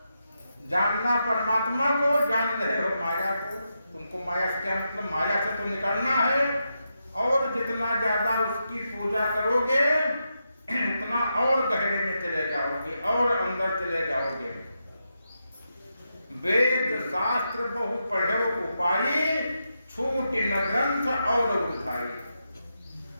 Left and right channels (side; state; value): both; inverted; correlation -0.86